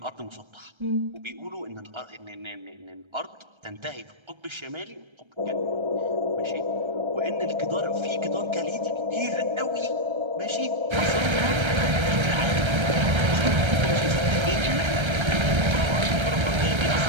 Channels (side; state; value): left; late; 1.3 ms